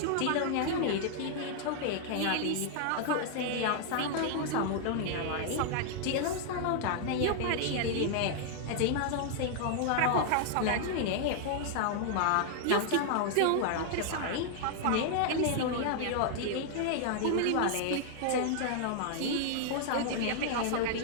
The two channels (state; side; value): different; both; correlation 0.00